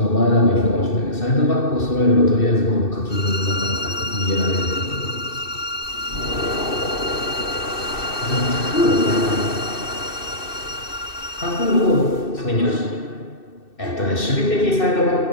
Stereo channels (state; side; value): late; right; 2.6 ms